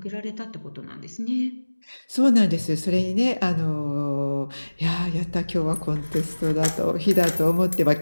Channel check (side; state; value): both; inverted; correlation -1.00